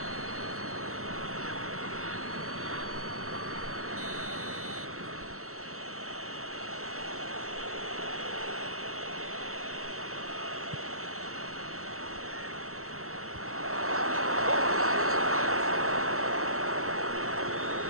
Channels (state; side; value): late; left; 0.63 ms